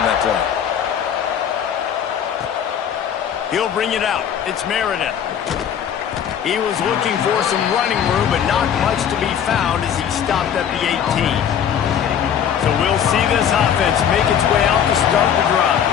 that play. He'll bring it out. It's Meredith. He was looking for some running room, but not much to be found as he stopped at the 18. So we'll see this offense make its way out to start the drive.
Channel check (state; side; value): quieter; right; 8.7 dB